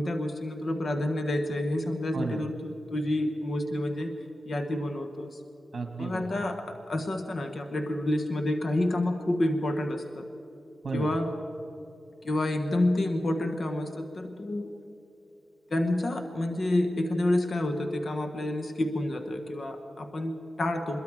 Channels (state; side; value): normal; both; correlation 0.93